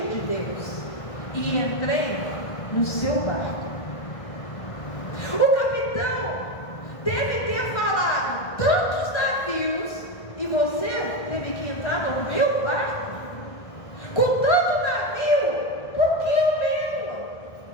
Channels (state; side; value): late; right; 1.5 ms